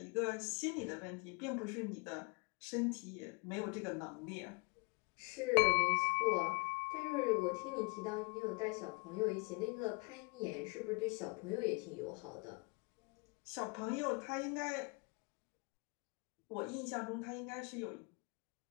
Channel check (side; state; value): right; quieter; 30.2 dB